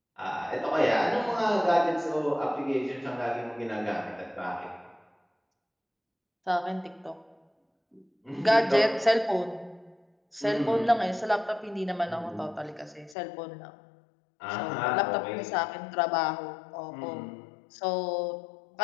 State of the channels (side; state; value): right; drops out; at 13.2 s